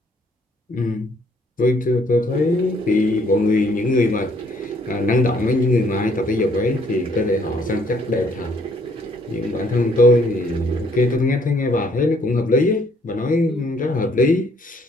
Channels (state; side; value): normal; both; correlation 0.65